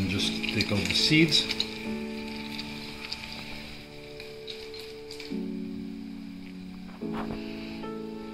just take out the seeds.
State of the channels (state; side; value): identical; both; correlation 1.00